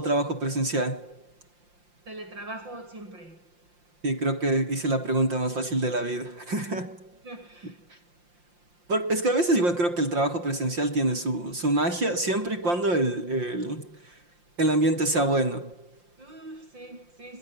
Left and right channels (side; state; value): left; late; 5.7 ms